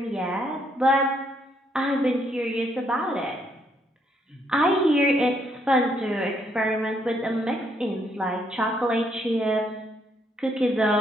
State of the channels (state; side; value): normal; both; correlation 0.72